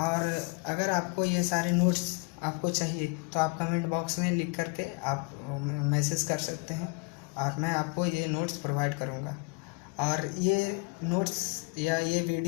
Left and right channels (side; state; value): right; quieter; 30.2 dB